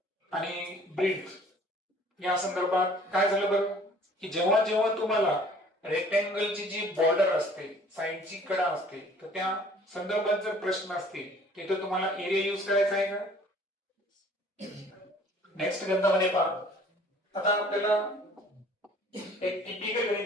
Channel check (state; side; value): normal; both; correlation 0.53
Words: आणि ब्रीथ या संदर्भात. काय झालं बरं की जेव्हा जेव्हा तुम्हाला रेक्टँगलची जी बॉर्डर असते साईडची कडा असते तर त्या संदर्भात जर प्रश्न असतील तिथे तुम्हाला एरिया यूज करायचा आहे का. नेक्स्ट गणितामध्ये पहा. आता आपल्याला एक टिपिकल